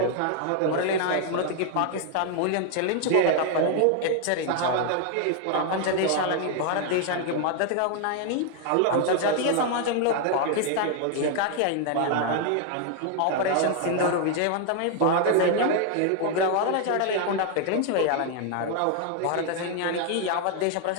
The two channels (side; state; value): both; different; correlation 0.00